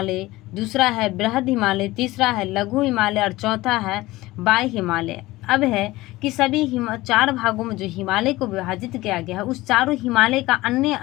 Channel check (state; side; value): quieter; right; 18.7 dB